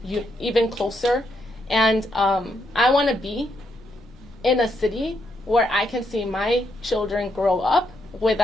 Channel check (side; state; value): both; normal; correlation 0.78